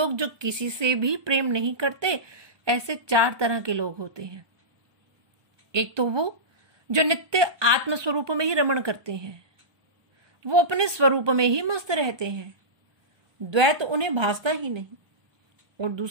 जो किसी से भी प्रेम नहीं करते, ऐसे 4 तरह के लोग होते हैं। एक तो वो जो नित्य आत्म स्वरूप में ही रमण करते हैं, वो अपने स्वरूप में ही मस्त रहते हैं, द्वैत उन्हें भासता ही नहीं। और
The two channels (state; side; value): late; left; 1.2 ms